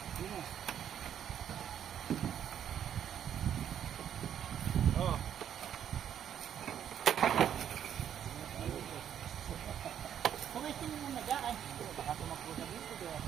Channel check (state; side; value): quieter; left; 9.6 dB